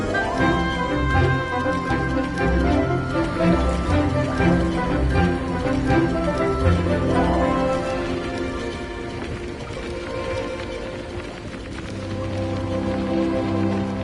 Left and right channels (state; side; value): identical; both; correlation 1.00